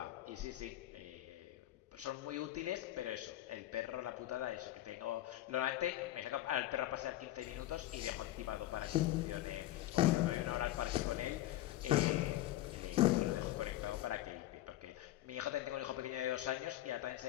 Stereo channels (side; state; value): right; quieter; 14.7 dB